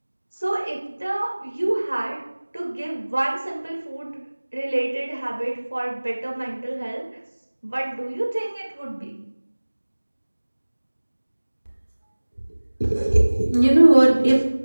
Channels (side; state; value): both; inverted; correlation -1.00